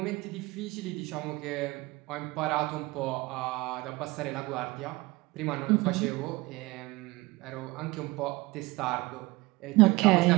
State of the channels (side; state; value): left; quieter; 22.3 dB